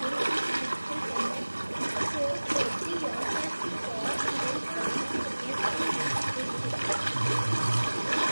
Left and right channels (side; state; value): both; inverted; correlation -1.00